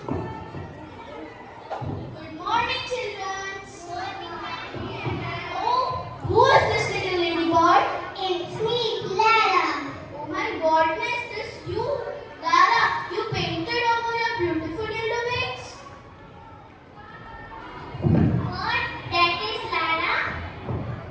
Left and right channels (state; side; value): identical; both; correlation 1.00